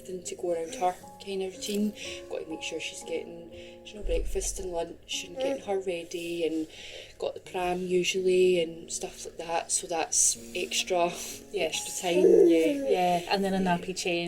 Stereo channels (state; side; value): identical; both; correlation 1.00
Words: to go around her kind of routine. Got to make sure she's getting, breakfast and lunch and getting her ready, and got the pram usually and stuff like that. So that's extra time. Yeah, and then a nappy